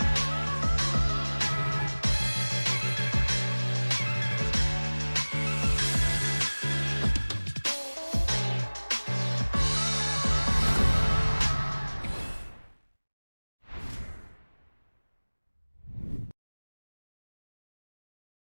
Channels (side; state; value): both; inverted; correlation -1.00